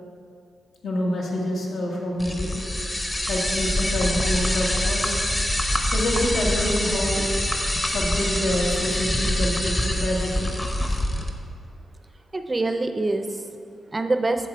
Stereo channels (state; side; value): normal; both; correlation 0.91